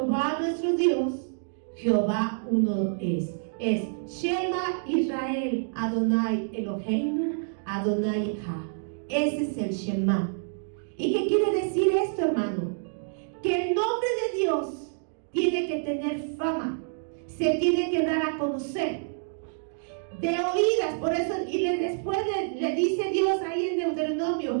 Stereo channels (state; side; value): silent; left; digital silence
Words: nuestro Dios, Jehová uno es. Es Shema Israel, Adonai Eloheinu, Adonai Echad. Ese es el Shema. ¿Y qué quiere decir esto, hermano? Que el nombre de Dios tiene que tener fama, se tiene que dar a conocer. De oídas, por eso, y después le dice Dios ahí en Deuteronomio: